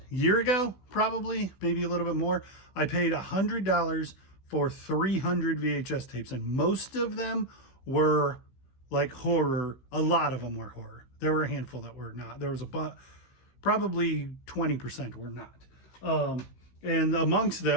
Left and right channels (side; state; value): right; late; 16 ms